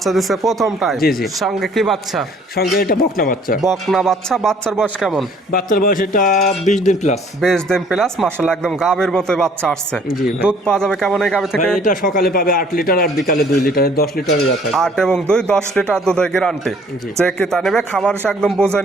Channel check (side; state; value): both; normal; correlation 0.58